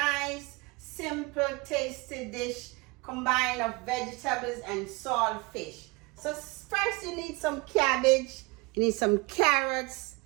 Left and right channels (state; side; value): quieter; left; 26.0 dB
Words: simple, tasty dish combined of vegetables and saltfish. So first you need some cabbage, you need some carrots,